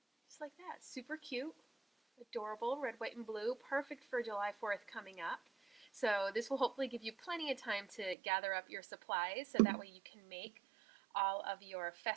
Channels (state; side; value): drops out; left; at 8.2 s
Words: Just like that. Super cute, adorable, red, white, and blue. Perfect for July 4th coming up. So this will hopefully give you plenty of time to gather up your supplies so that way you can make all of your